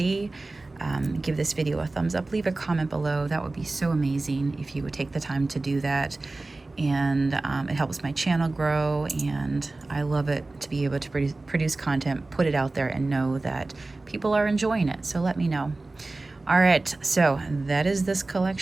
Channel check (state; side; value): quieter; left; 3.2 dB